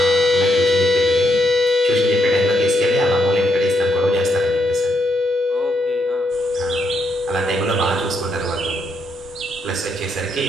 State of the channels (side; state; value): both; normal; correlation 0.77